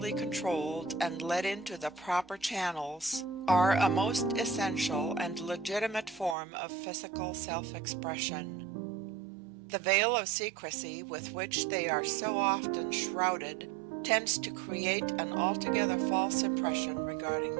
controlled and led into the proper channels, are a most essential and legitimate form of physical self-expression. The veil of secrecy with which they are so often shrouded tends to create an altogether false impression regarding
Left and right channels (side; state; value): left; drops out; at 6.4 s